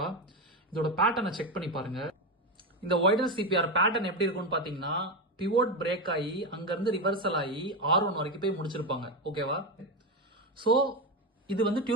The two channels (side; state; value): both; normal; correlation 0.13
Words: இதோட பேட்டர்னை செக் பண்ணி பாருங்க. இந்த வைடர் சிபிஆர் பேட்டர்ன் எப்படி இருக்கும்னு பாத்தீங்கன்னா, பிவோட் பிரேக் ஆகி அங்கிருந்து ரிவர்சல் ஆகி R1 வரைக்கும் போய் முடிச்சிருப்பாங்க, ஓகேவா? ஸோ இது வந்து